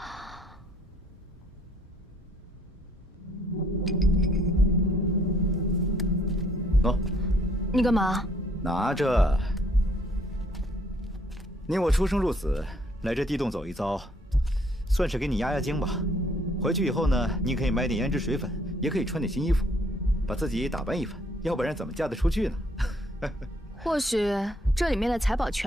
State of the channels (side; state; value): both; normal; correlation 0.65